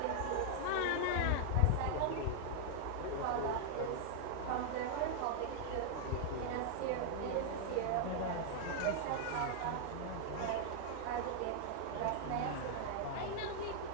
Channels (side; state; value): both; different; correlation 0.00